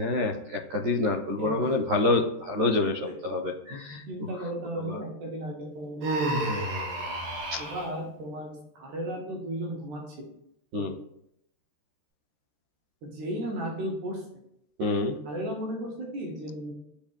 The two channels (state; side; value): late; left; 13 ms